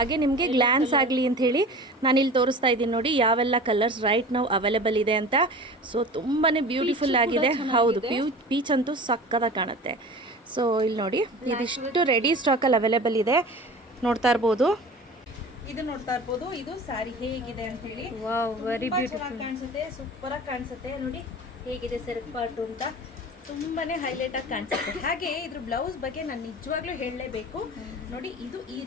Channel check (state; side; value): normal; both; correlation 0.37